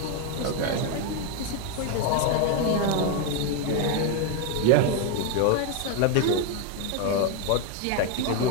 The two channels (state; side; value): different; both; correlation 0.01